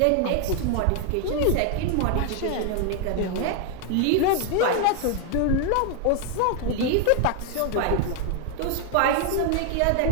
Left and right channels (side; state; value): both; different; correlation 0.00